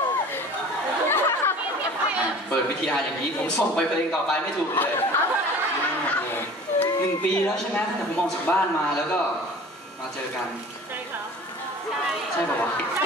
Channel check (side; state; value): both; normal; correlation 0.43